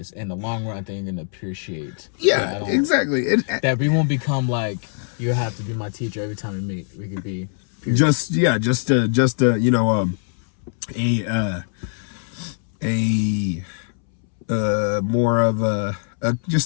In the long run, I think you're gonna appreciate. Yeah, exactly. That we won't become like, you have to be my teacher every time we meet. We could be peers. Just you know, more of a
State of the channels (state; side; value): silent; right; 64 dB below the other